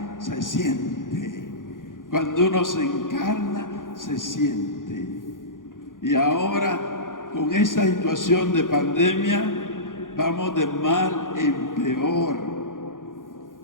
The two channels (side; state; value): right; late; 0.89 ms